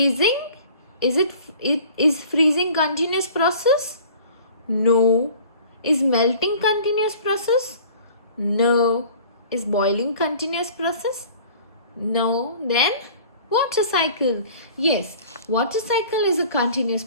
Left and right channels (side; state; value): both; inverted; correlation -0.47